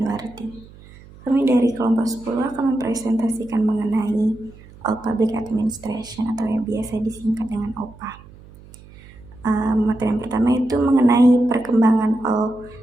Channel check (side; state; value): right; noise; hum, 22 dB below the sound